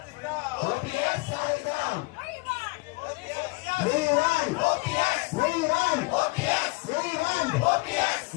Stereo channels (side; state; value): right; quieter; 26.2 dB